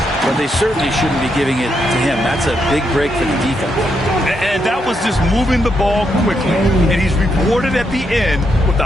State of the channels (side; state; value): both; normal; correlation 0.80